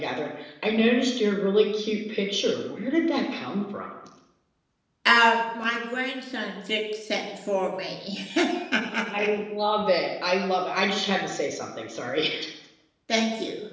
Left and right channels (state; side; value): identical; both; correlation 1.00